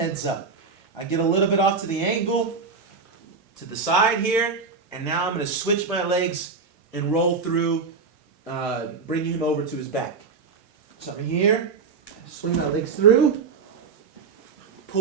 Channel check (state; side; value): quieter; left; 4.9 dB